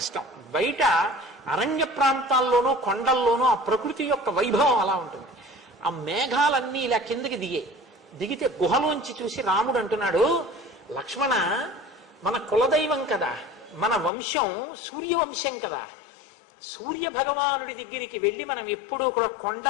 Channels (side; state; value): right; drops out; at 14.1 s